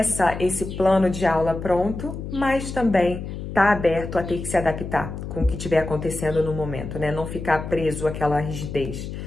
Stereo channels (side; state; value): left; noise; hum, 8 dB below the sound